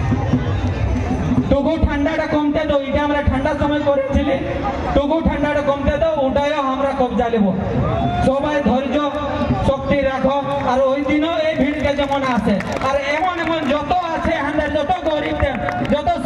টুকু ঠান্ডাটা কমতে দাও, এটা আমরা ঠান্ডার সময় করেছিলি, টুকু ঠান্ডাটা কমতে দাও, ওটাও আমরা কবজা নেব। সবাই ধৈর্য শক্তি রাখো। আর ওই দিনও এই ভিড়কে যেমন আছে, আর এমন এমন যত আছে আমাদের, যত গরিবদের, যত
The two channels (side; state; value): both; identical; correlation 1.00